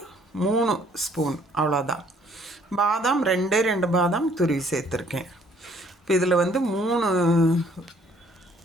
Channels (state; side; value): normal; both; correlation 0.60